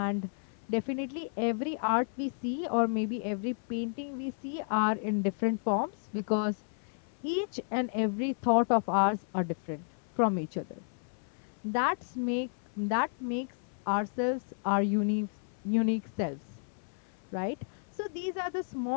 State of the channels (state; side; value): silent; right; 56 dB below the other